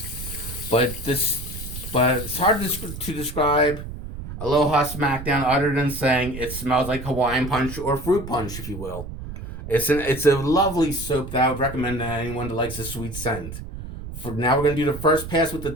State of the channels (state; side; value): noise; right; rumble, 10 dB below the sound